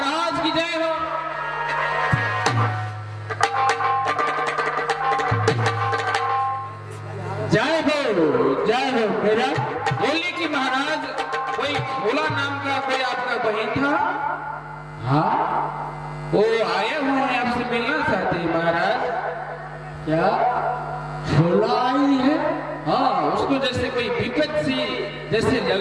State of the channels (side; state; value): both; identical; correlation 1.00